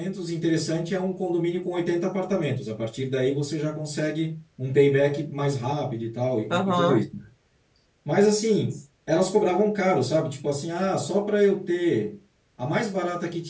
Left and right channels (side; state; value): both; identical; correlation 1.00